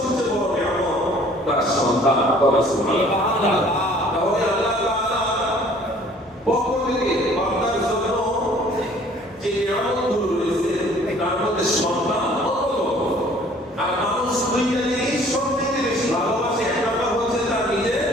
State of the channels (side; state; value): both; normal; correlation 0.55